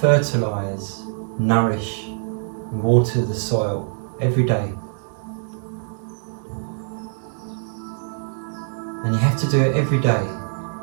nourish, and water the soil every day. And you have to do it every day,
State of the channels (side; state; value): left; silent; digital silence